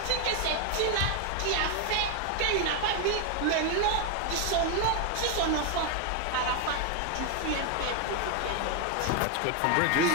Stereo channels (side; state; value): both; different; correlation 0.01